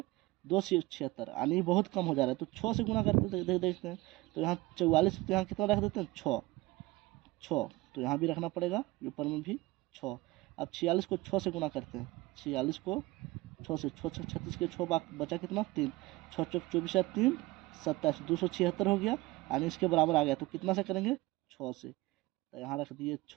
276, यानी बहुत कम हो जा रहा है। तो 6 से गुना करते देखते हैं, तो यहाँ 44, तो यहाँ कितना रख देते हैं 6, तो यहाँ भी रखना पड़ेगा, ऊपर में भी 6। अब 46 को 6 से गुना करते हैं, 46 को 6 से, 6 36 के 6 बचा कितना 3, 6 चौक 24 या 3 27, 276 हो गया, यानी इसके बराबर आ गया। तो कितना से करेंगे 6 से, तो यहाँ रख दिए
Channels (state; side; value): quieter; left; 20.5 dB